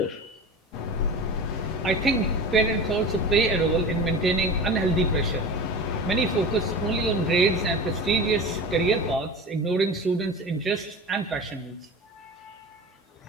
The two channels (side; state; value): both; normal; correlation 0.32